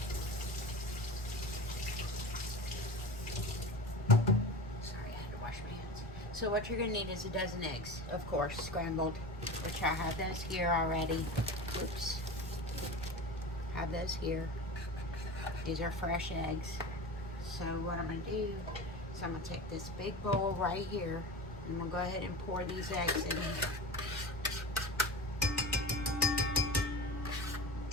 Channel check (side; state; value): right; noise; rumble, 15 dB below the sound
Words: Sorry, I had to wash my hands. So what you're gonna need is a dozen eggs, of course, scrambled, which I have those here already. Oops. Have those here. These are fresh eggs. So what I'm gonna do is I'm gonna take this big bowl right here, and I'm gonna go ahead and pour these eggs in here.